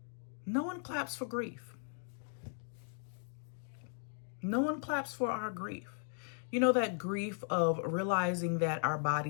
No one claps for grief. No one claps for our grief. You know, that grief of realizing that our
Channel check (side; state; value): right; silent; 53 dB below the other